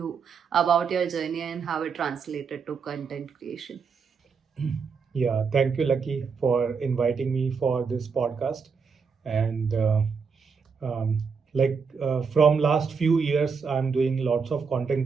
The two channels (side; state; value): left; quieter; 5.6 dB